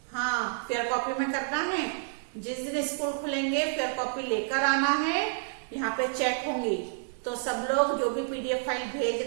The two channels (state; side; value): silent; left; digital silence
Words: हाँ, फेयर कॉपी में करना है। जिस दिन स्कूल खुलेंगे फेयर कॉपी लेकर आना है, यहाँ पे चेक होंगी। तो सब लोग जो भी पीडीएफ फाइल